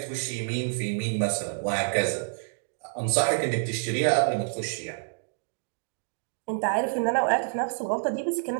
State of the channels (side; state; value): left; silent; digital silence